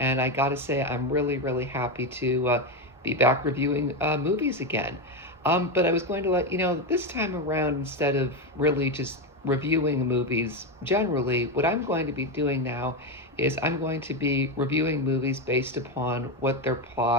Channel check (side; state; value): both; normal; correlation 0.12